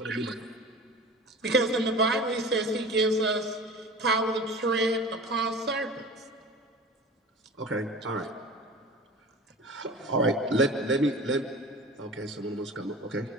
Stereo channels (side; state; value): both; normal; correlation 0.37